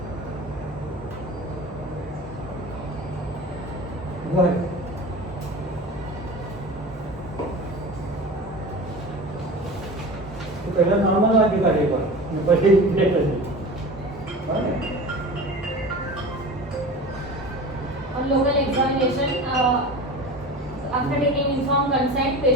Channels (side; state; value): both; normal; correlation 0.34